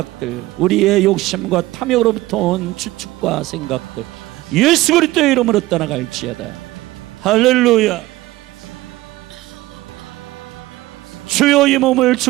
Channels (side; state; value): left; quieter; 18.1 dB